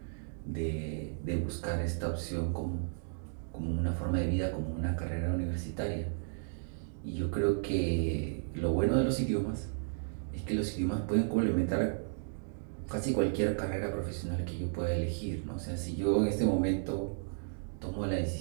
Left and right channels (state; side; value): silent; left; digital silence